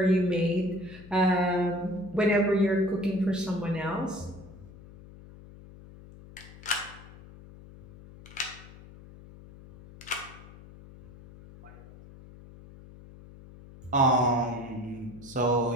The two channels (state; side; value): noise; left; hum, 19 dB below the sound